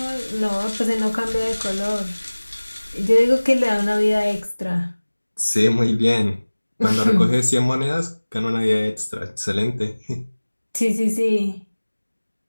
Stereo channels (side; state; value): both; inverted; correlation -1.00